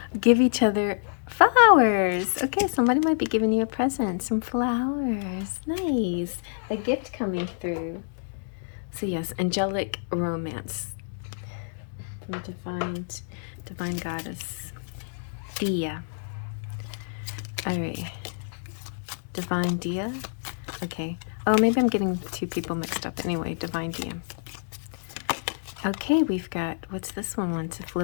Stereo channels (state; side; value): silent; right; digital silence